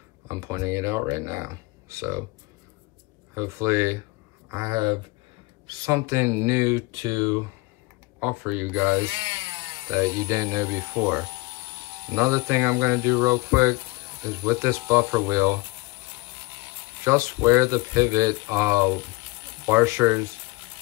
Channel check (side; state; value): right; quieter; 23.7 dB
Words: I'm pointing it out right now. So hopefully I have something new to offer you guys that you didn't know before. Another thing I'm gonna do real quick is with this buffer wheel, just where the pivot washers